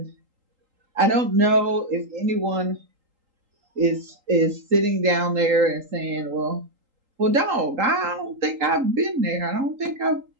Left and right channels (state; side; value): late; left; 3.8 ms